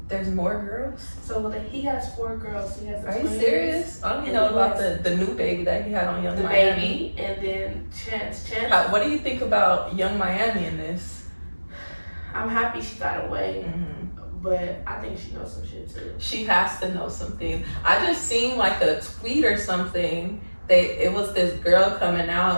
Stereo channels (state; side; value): inverted; both; correlation -1.00